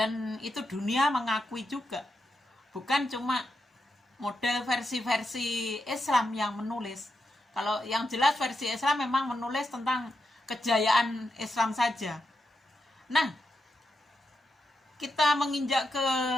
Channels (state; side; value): normal; both; correlation 0.86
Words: itu dunia mengakui juga. Bukan cuma model versi-versi Islam yang menulis. Kalau yang jelas versi Islam memang menulis tentang kejayaan Islam saja. Nah, kita menginjak ke